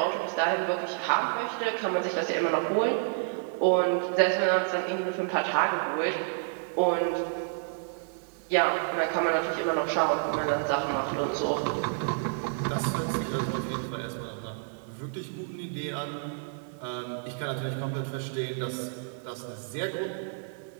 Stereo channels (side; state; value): left; silent; digital silence